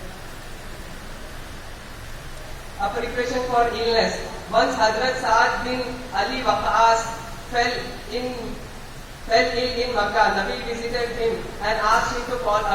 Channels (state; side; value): identical; both; correlation 1.00